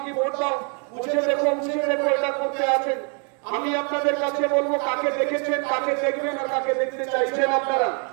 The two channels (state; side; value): quieter; left; 38.1 dB